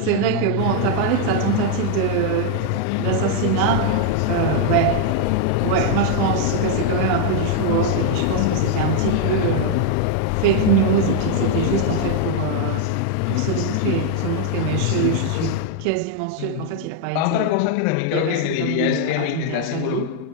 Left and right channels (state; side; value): different; both; correlation 0.00